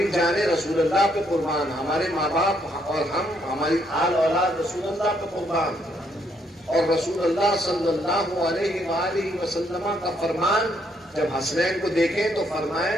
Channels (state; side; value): normal; both; correlation 0.72